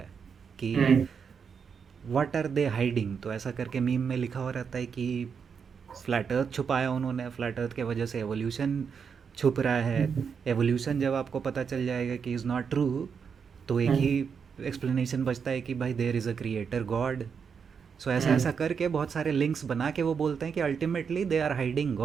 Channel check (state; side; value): quieter; left; 6.4 dB